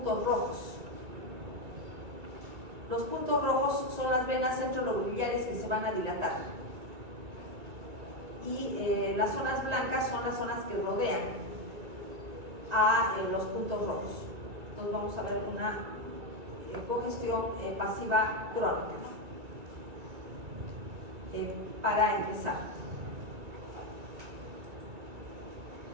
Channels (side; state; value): left; late; 2.3 ms